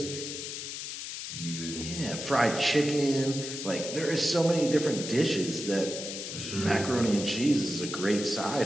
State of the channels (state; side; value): noise; left; hiss, 7 dB below the sound